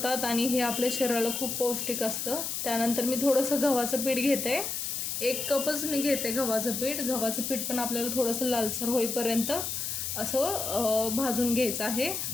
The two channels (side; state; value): left; noise; hiss, 3 dB below the sound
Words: आणि हे आपल्या शरीराला खूप पौष्टिक असतं। त्यानंतर मी थोडंसं गव्हाचं पीठ घेते, 1 कपच मी घेते गव्हाचं पीठ। गव्हाचं पीठ पण आपल्याला थोडंसं लालसर होईपर्यंत असं भाजून घ्यायचं आहे।